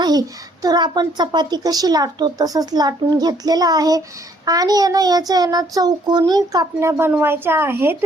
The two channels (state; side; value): normal; both; correlation 0.65